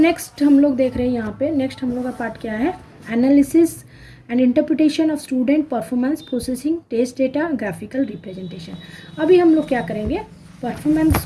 हम लोग देख रहे हैं यहाँ पे, नेक्स्ट हम लोग का पार्ट क्या है? Analysis and interpretation of student performance, processing test data, graphical representation. अभी हम लोग क्या करेंगे? परफॉर्मेंस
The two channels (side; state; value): both; identical; correlation 1.00